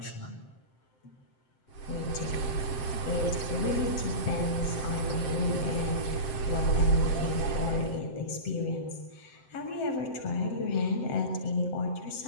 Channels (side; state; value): right; late; 7.7 ms